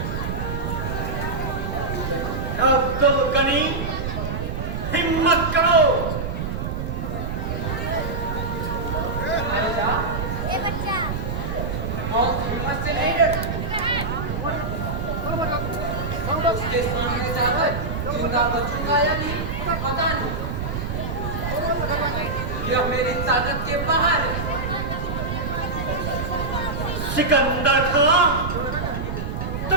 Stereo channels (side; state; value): right; noise; rumble, 3 dB below the sound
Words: अब तुम गनी हिम्मत करो। हिम्मत से नहीं डर, उसके सामने जाकर जिंदा बचूंगा या नहीं पता नहीं, यह मेरी ताकत के बाहर है। सिकंदर खां,